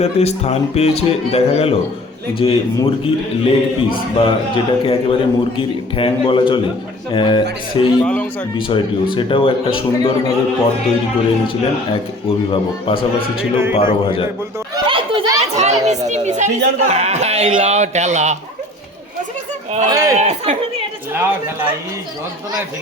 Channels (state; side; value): normal; both; correlation 0.48